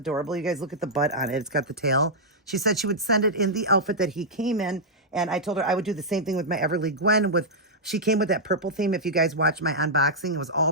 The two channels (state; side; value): normal; both; correlation -0.08